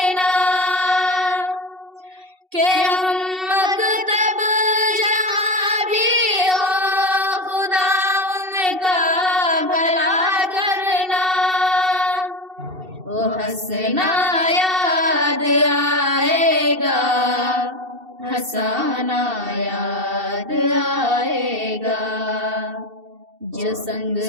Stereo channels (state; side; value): late; left; 2.7 ms